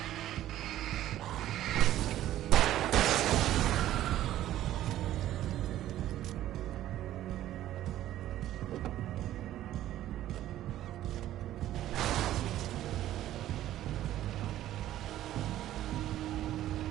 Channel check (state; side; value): quieter; left; 13.2 dB